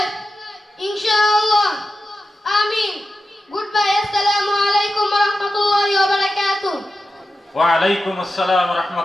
inshallah. Ameen. Goodbye. Assalamu alaikum wa rahmatullahi wa barakatuh. ওয়া আলাইকুম আসসালাম ওয়া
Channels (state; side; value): normal; both; correlation 0.92